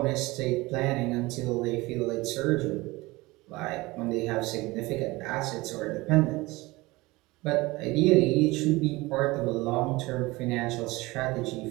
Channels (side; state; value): left; quieter; 21.5 dB